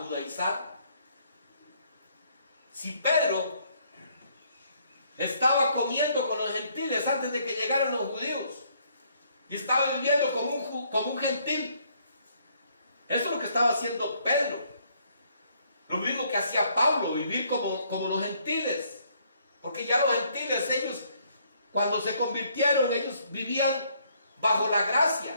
Si Pedro estaba comiendo con los gentiles antes de que llegaran los judíos. Y estaba viviendo como un gentil. Eso es lo que estaba haciendo Pedro. Lo mismo que hacía Pablo, vivir como los gentiles. Porque ya los gentiles, ellos, cuando se convirtieron, ellos vivían bajo la gracia,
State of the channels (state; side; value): inverted; both; correlation -0.67